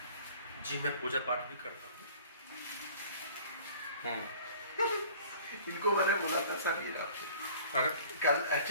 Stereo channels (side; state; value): both; inverted; correlation -0.48